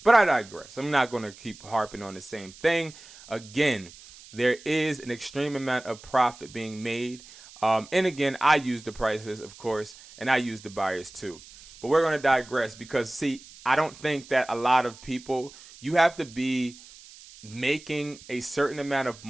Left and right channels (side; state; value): right; noise; hiss, 20 dB below the sound